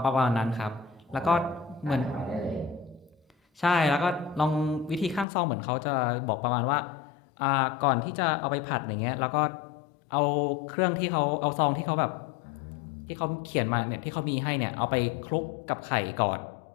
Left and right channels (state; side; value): drops out; right; at 5.2 s